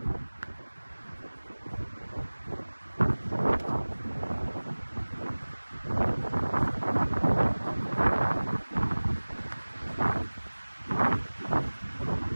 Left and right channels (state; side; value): inverted; both; correlation -1.00